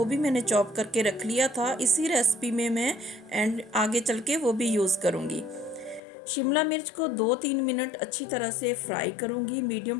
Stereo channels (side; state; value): right; drops out; at 6.0 s